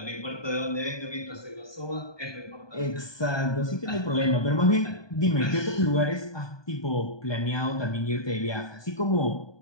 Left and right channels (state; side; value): late; right; 1.2 ms